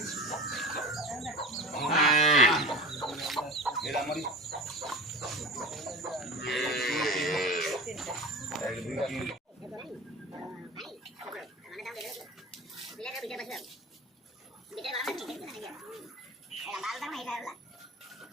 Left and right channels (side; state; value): both; normal; correlation 0.32